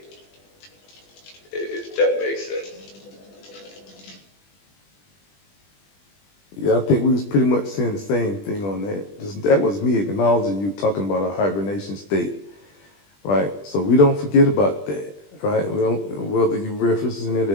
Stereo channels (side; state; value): right; late; 20 ms